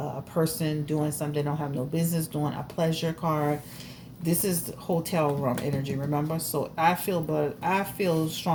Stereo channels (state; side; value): identical; both; correlation 1.00